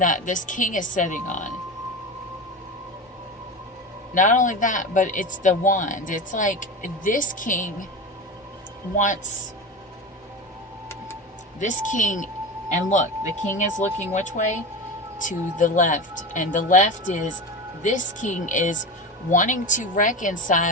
this king is sitting on. Not only that, but it's the wand. It's like this king wants this king, and look, the king is looking which way? To the left. And the left is, this king is wanting to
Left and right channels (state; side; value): normal; both; correlation 0.25